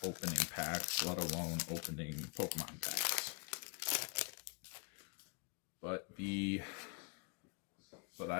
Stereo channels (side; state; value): right; quieter; 32.1 dB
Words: opening packs, let alone opening Pokemon packs. But